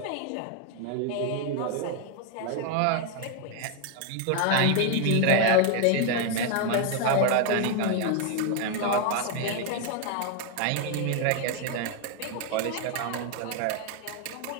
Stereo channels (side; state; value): both; different; correlation 0.01